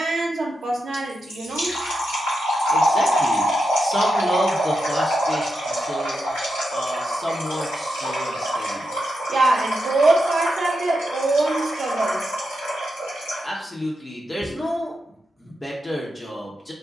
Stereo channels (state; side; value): normal; both; correlation 0.86